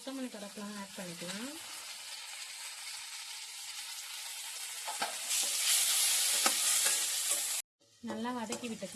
கருவேப்பிலை ஆட் பண்ணிக்கலாம். நல்லா வதக்கி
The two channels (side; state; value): both; identical; correlation 1.00